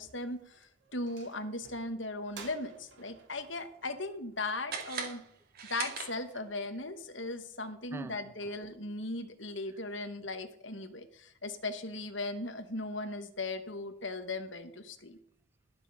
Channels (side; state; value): both; normal; correlation -0.04